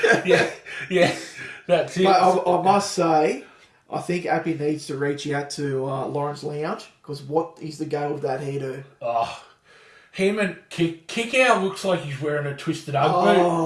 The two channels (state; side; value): identical; both; correlation 1.00